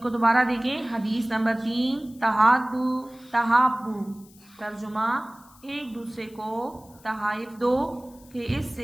کو دوبارہ دیکھیں. حدیث نمبر 3 تحادو تحابو. ترجمہ ایک دوسرے کو تحائف دو کہ اس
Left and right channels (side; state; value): left; noise; hiss, 26 dB below the sound